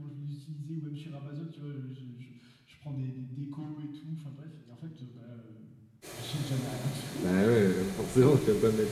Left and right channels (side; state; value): both; identical; correlation 1.00